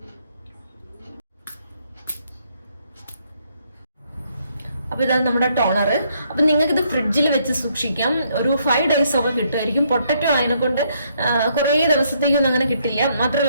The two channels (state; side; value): inverted; both; correlation -0.71